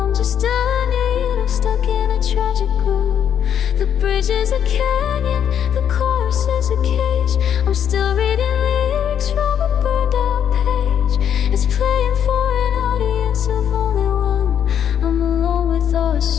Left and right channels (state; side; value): quieter; right; 9.0 dB